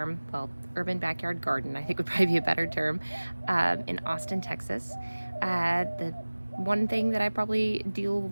well, urban backyard garden, I think would probably be a better term, in Austin, Texas. The one thing that I probably deal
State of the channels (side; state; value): both; inverted; correlation -1.00